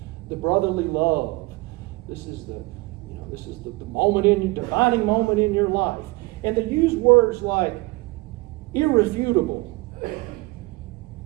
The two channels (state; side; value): quieter; left; 23.3 dB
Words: the brotherly love. This is the moment defining moment in your life. And they use words like irrefutable.